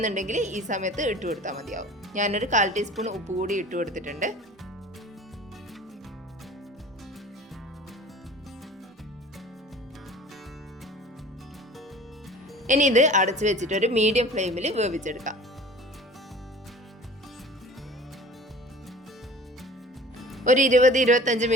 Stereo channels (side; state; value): both; normal; correlation 0.43